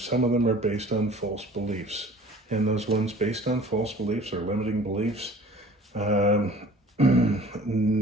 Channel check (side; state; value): both; normal; correlation 0.47